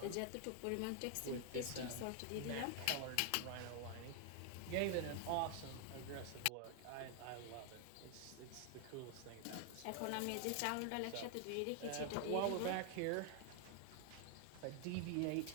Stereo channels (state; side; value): different; both; correlation 0.00